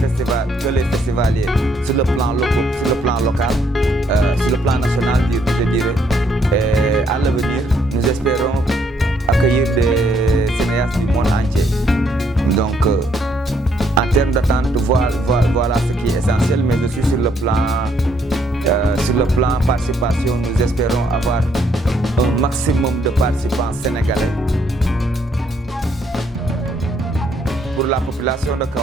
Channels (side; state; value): both; normal; correlation 0.70